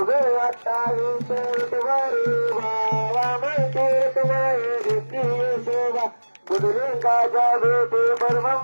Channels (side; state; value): both; inverted; correlation -1.00